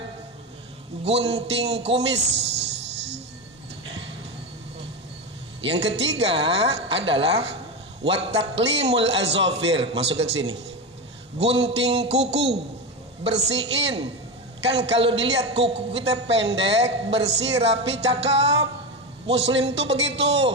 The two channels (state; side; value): normal; both; correlation 0.17